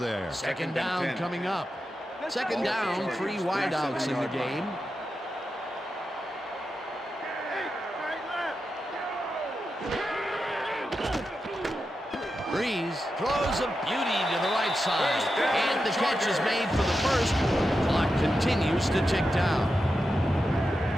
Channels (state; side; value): normal; both; correlation 0.89